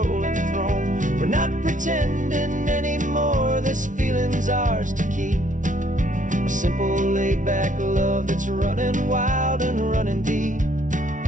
throne. We're not pretending anymore, this feeling's ours to keep, a simple laid-back love that's running wild and running deep.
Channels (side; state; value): left; late; 0.37 ms